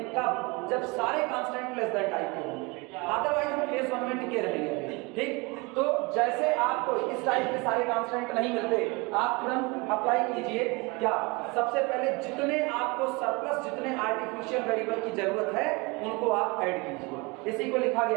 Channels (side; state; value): left; quieter; 26.8 dB